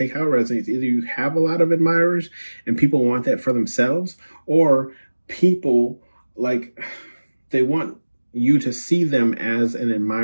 how it resonates. Either you have a lot of admirers and people want that for themselves, or people like they want you to see them as an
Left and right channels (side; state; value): both; inverted; correlation -1.00